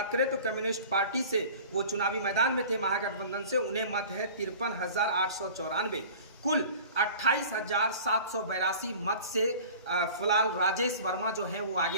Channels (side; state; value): both; inverted; correlation -0.42